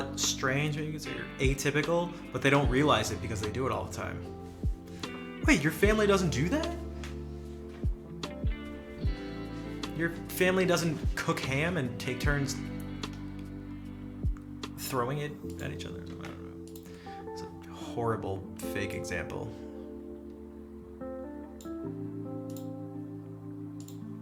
strange, maybe you could say, or atypical, but they don't realize it because they do it all the time. Wait, your family doesn't do that? Your family doesn't cook ham and take turns throwing it at each other? I don't know. It's a horrible fake example.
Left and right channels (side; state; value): both; identical; correlation 1.00